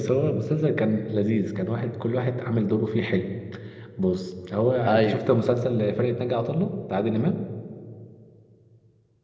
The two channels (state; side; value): identical; both; correlation 1.00